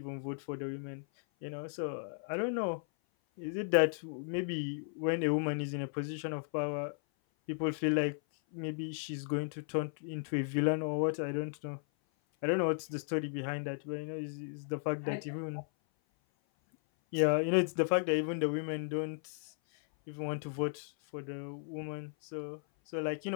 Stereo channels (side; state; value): right; silent; 54 dB below the other